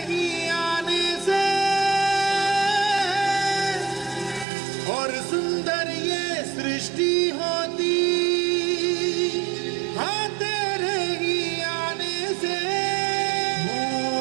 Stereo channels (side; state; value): left; drops out; at 4.5 s